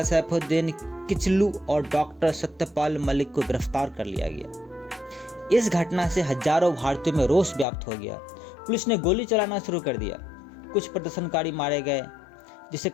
सैफुद्दीन किचलू और डॉक्टर सत्यपाल मलिक को गिरफ्तार कर लिया गया। इस घटना से हजारों भारतीयों में रोष व्याप्त हो गया। पुलिस ने गोली चलाना शुरू कर दिया। कुछ प्रदर्शनकारी मारे गए, जिससे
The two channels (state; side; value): drops out; right; at 7.7 s